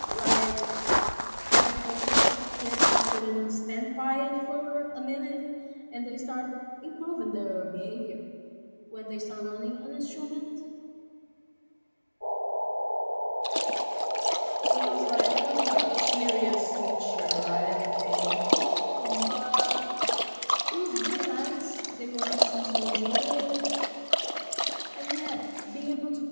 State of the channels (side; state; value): both; inverted; correlation -1.00